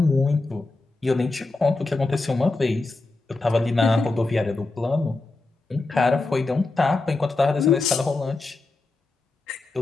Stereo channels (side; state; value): right; quieter; 3.3 dB